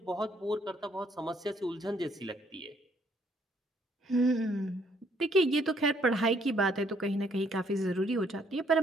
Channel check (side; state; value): both; normal; correlation 0.68